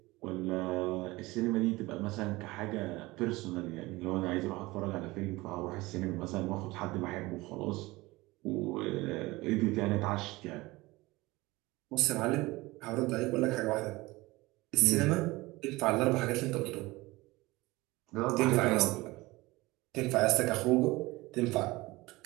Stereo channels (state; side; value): quieter; left; 20.9 dB